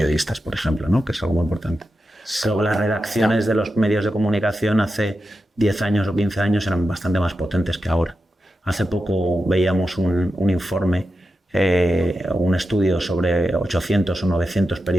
por ejemplo, ¿no? Que es algo muy importante. Creo que las redacciones de los medios de comunicación hace 10 años o 15 años eran bastante más potentes que ahora. Hace poco veíamos un informe, un estudio sobre 800 o 900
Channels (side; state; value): both; normal; correlation 0.90